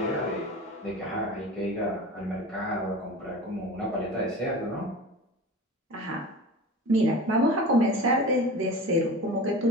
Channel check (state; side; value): normal; both; correlation 0.34